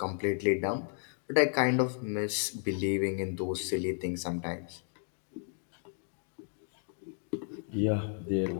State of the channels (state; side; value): silent; right; 56 dB below the other